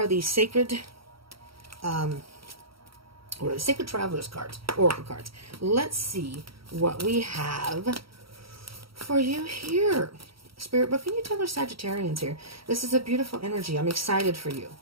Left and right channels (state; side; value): late; left; 0.75 ms